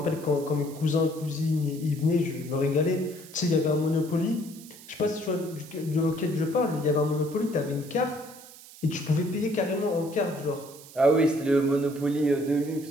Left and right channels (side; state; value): right; noise; hiss, 19 dB below the sound